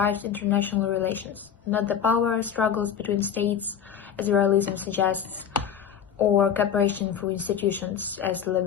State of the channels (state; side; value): quieter; right; 8.4 dB